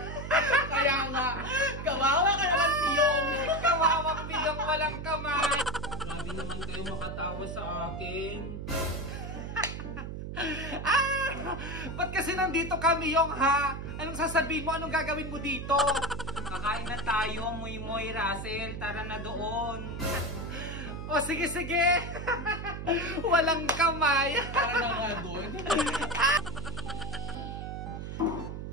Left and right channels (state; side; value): noise; right; hum, 7 dB below the sound